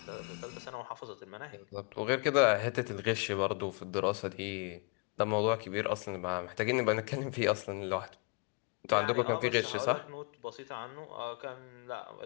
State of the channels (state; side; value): quieter; right; 33.5 dB